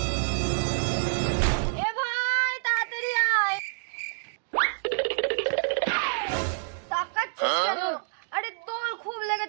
এ ভাই তাড়াতাড়ি আয়। তাকাচ্ছিস কেন? আরে তোর খুব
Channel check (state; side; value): silent; left; 60 dB below the other